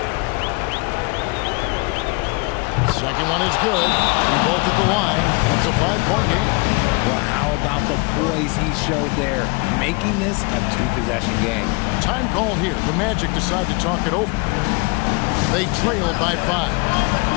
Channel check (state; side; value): quieter; right; 29.0 dB